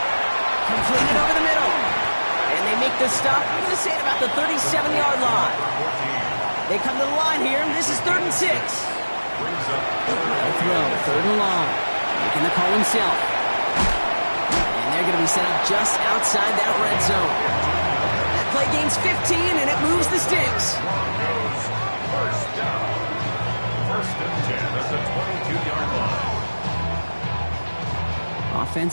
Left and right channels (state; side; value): inverted; both; correlation -1.00